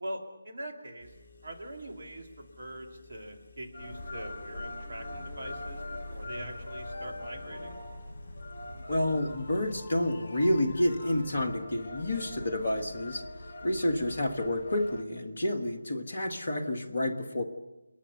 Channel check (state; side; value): inverted; both; correlation -0.90